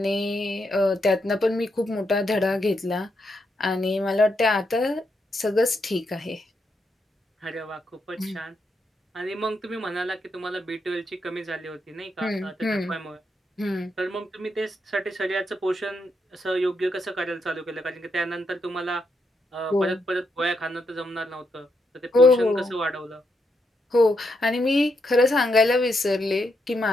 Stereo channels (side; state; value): both; normal; correlation 0.80